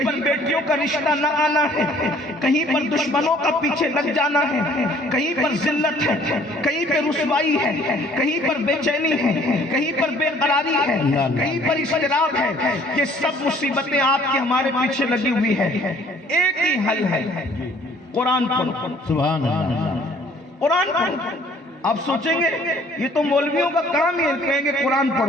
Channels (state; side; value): normal; both; correlation 0.57